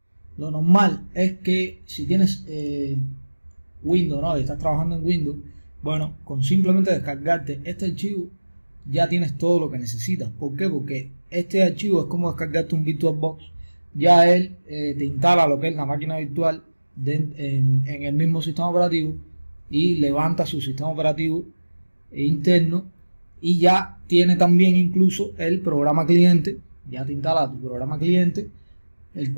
Lo normal es que si tienes Windows, ¿no? Y estás trabajando en Windows, bueno, con simplemente descargarte este archivo ya tienes todo lo que necesitas. ¿Por qué? Porque este archivo es como descargarte un VirtualBox. Ya él te instala lo que es la máquina virtual en el mismo sistema operativo y levanta su sistema operativo interno y ya tiene también incluso el programa cliente. Ya te instala tu programa cliente, el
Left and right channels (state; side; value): inverted; both; correlation -1.00